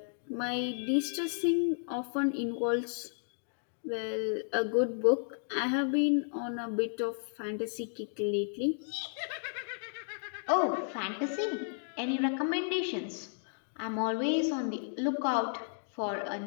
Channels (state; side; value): silent; right; digital silence